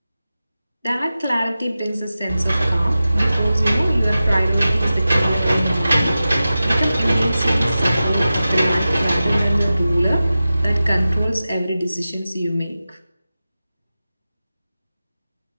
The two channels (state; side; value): inverted; both; correlation -0.94